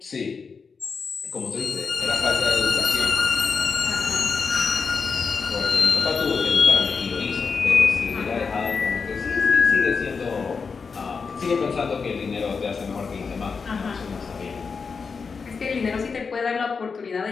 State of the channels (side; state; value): right; quieter; 5.2 dB